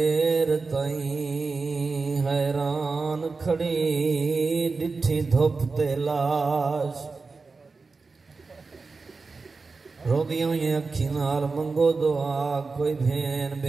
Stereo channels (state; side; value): quieter; left; 4.2 dB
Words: تائیں حیران کھڑی ڈٹھی دھوپ تے لاش روگیوں یہ اکھی نال منگو دعا کوئی بھین